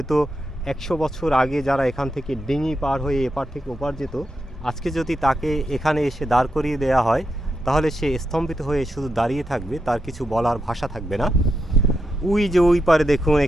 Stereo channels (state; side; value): normal; both; correlation 0.85